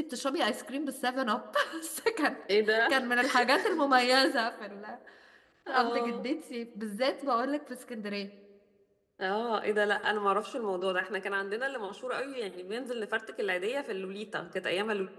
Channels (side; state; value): both; identical; correlation 1.00